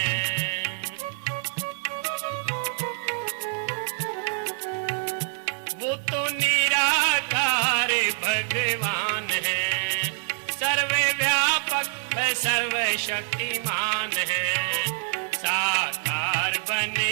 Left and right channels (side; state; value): left; silent; 61 dB below the other